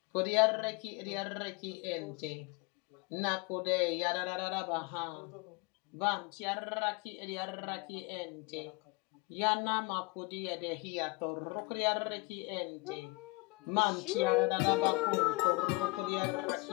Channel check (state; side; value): quieter; right; 25.8 dB